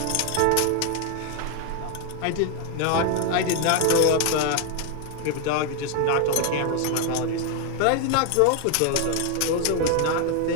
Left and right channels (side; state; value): both; different; correlation 0.01